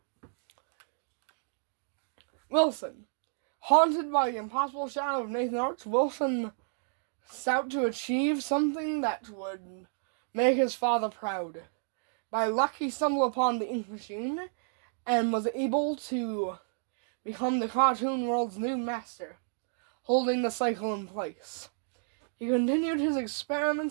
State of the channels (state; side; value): silent; left; digital silence